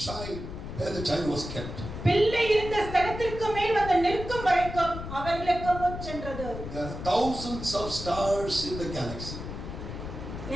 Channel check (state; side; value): noise; left; rumble, 8 dB below the sound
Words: child where the child was kept. பிள்ளை இருந்த ஸ்தலத்திற்கு மேல் வந்து நிற்கும் வரைக்கும் அவர்களுக்கு முன் சென்றது. There are thousands of stars in the galaxy,